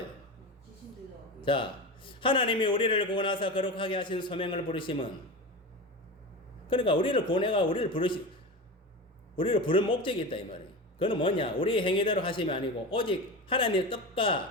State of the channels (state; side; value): normal; both; correlation 0.26